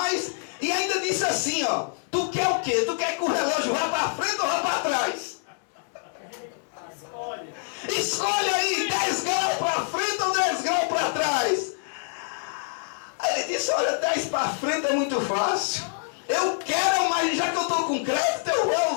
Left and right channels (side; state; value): right; silent; 59 dB below the other